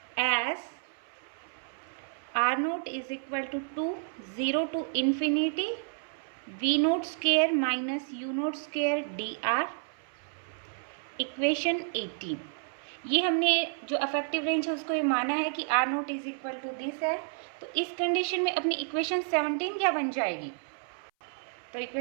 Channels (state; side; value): silent; left; 57 dB below the other